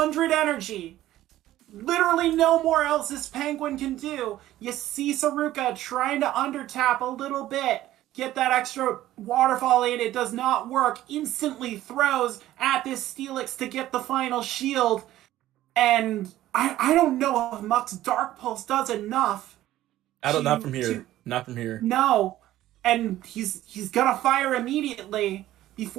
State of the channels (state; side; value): quieter; left; 14.3 dB